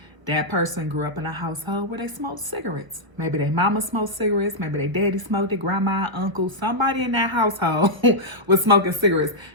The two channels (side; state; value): left; late; 1.0 ms